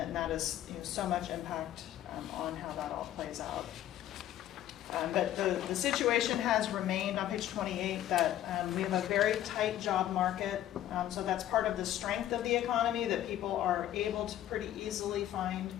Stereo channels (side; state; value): right; quieter; 12.5 dB